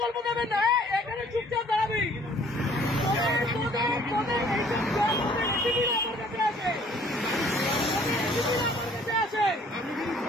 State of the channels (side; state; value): both; normal; correlation 0.57